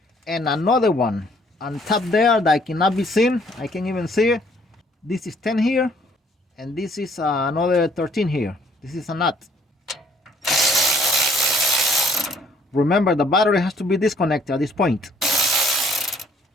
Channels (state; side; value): normal; both; correlation 0.62